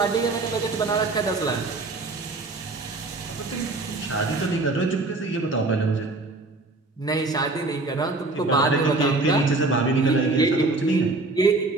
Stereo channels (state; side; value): quieter; left; 3.2 dB